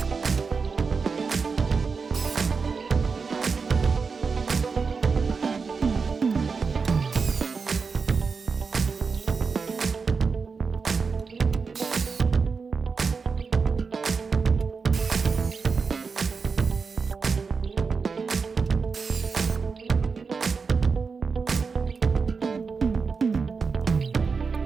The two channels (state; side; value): quieter; left; 5.0 dB